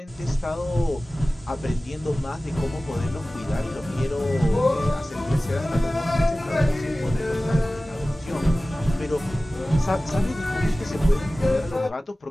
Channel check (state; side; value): normal; both; correlation 0.97